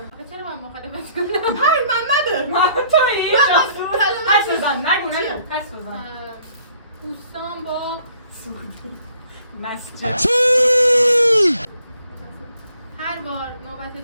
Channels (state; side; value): inverted; both; correlation -0.61